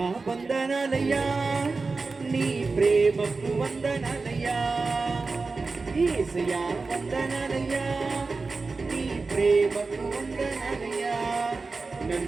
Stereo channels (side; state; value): left; quieter; 4.0 dB